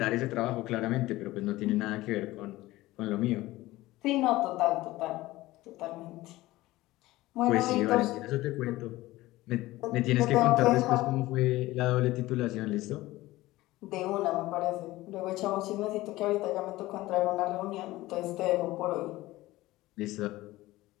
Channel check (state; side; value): quieter; right; 17.9 dB